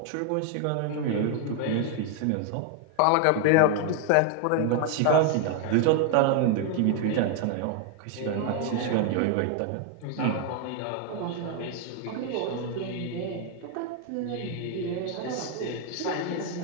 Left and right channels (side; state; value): both; different; correlation 0.00